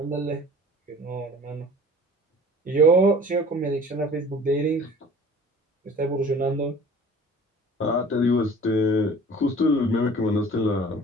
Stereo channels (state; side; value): normal; both; correlation 0.46